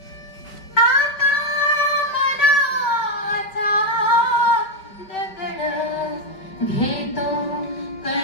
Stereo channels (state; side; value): late; right; 5.3 ms